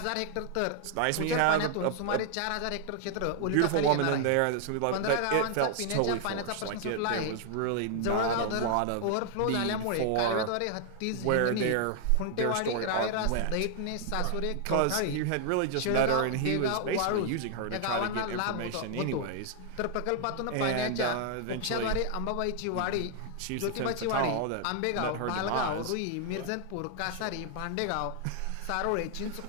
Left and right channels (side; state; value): both; different; correlation 0.00